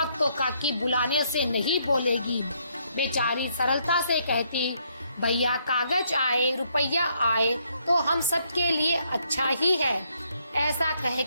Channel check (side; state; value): both; inverted; correlation -0.72